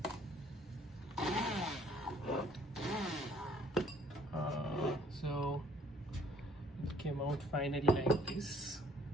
So it came out finally like this.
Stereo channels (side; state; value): both; normal; correlation 0.60